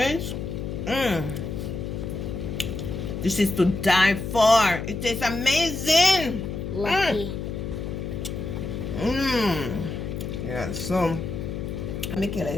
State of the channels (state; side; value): noise; left; hum, 5 dB below the sound